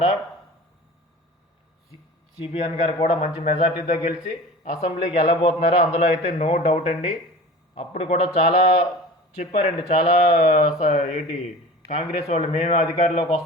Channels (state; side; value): normal; both; correlation 0.38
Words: సిబిఎన్ గారు కూడా మంచి మెజార్టీతో గెలిచి అసెంబ్లీకి వెళ్ళబోతున్నారు. అందులో అయితే నో డౌట్ అండి. అప్పుడు కూడా చాలా చెప్పారండి, చాలా కాంగ్రెస్ వాళ్ళు మేమే అధికారంలోకి